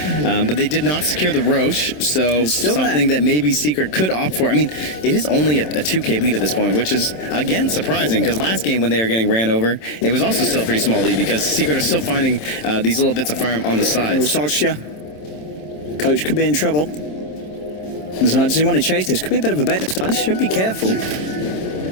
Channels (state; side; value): late; right; 27 ms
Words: But they did not secure the Roche, so something that maybe Secret could opt for. I mean, it is only a 2K lead at this point, which is, again, surprising because last game when they were getting ran over, it was also still a pretty small lead because Secret are still finding these little bits of farm on the sides. Coach could be in trouble. Does he want to chase this? Could be a bit of a bet this time. Should be careful.